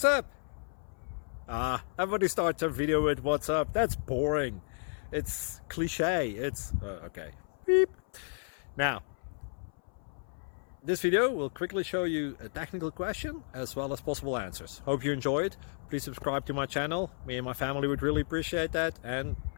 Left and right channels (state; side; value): silent; right; 56 dB below the other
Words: up? Everybody starts a video with what's up. That's boring. It's cliche. It's okay. Beep. Now, this video will quickly show you a technical question as well as possible answers. Hope you enjoyed. Please subscribe to my channel. Me and my family would really appreciate that, and